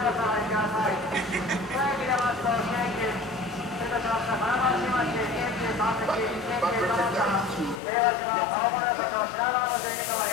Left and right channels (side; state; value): right; drops out; at 7.8 s